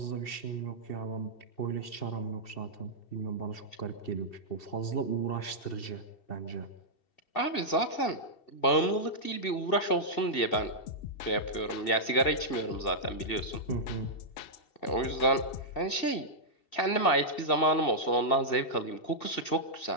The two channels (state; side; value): late; right; 2.7 ms